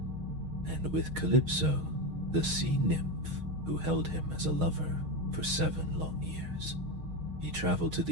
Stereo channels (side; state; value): left; late; 6.4 ms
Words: and with Calypso, the sea nymph who held him as a lover for 7 long years. He traveled to